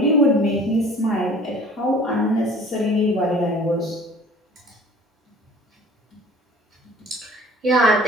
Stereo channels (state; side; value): normal; both; correlation 0.48